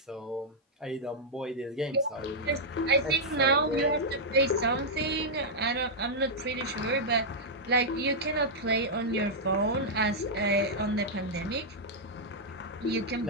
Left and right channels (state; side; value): normal; both; correlation -0.06